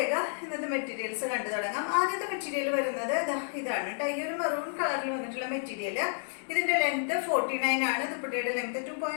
ഇന്നത്തെ മെറ്റീരിയൽസ് കണ്ടു തുടങ്ങാം. ആദ്യത്തെ മെറ്റീരിയൽ വരുന്നത് ഇതാണ് കേട്ടോ. ഈ ഒരു മെറൂൺ കളറിൽ വന്നിട്ടുള്ള മെറ്റീരിയൽ. ഇതിന്റെ ലെങ്ത് 49 ആണ്. ദുപ്പട്ടയുടെ ലെങ്ത്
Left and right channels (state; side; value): silent; right; digital silence